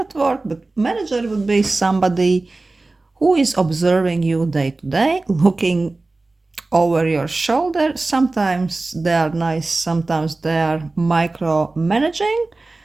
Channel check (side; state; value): left; quieter; 3.3 dB